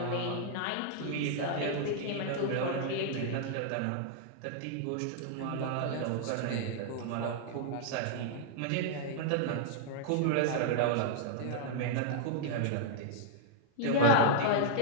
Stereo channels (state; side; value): different; both; correlation -0.01